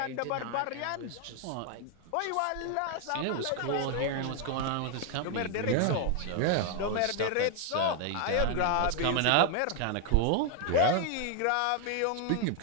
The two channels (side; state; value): both; different; correlation 0.00